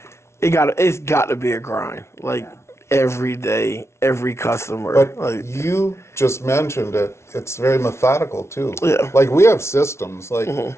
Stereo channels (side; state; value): right; late; 0.13 ms